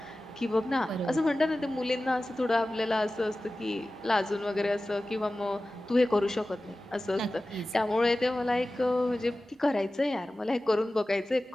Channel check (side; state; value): both; normal; correlation 0.96